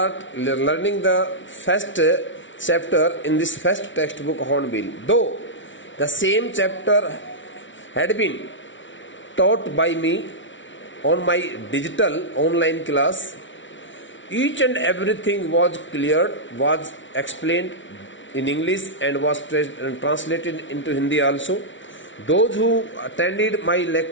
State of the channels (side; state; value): right; late; 0.56 ms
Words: learning the first chapter in this first textbook Hornbill. Though the same chapter had been taught by me on my digital online class, each and everything was cleared, was explained in English and was translated into Hindi also. Those who attended my